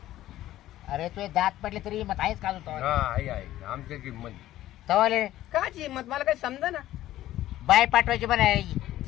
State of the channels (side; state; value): right; quieter; 14.2 dB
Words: अरे तुझे दात पडले तरी मत आहेच का तू. हा आहे आमच्यात हिंमत. तवाले काची हिंमत मला काही समजा ना. बाय पाठवायची पण आहे